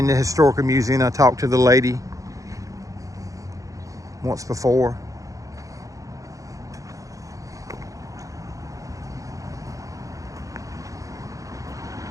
the historical museum. I talked to the lady once before.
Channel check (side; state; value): left; late; 0.16 ms